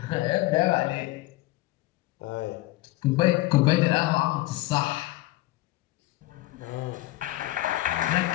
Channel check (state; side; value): quieter; right; 18.0 dB